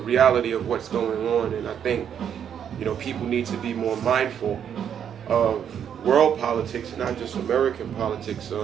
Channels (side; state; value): left; quieter; 8.6 dB